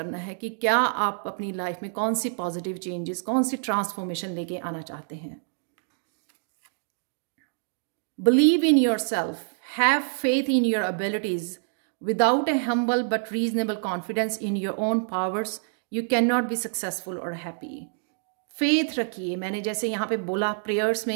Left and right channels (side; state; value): left; silent; digital silence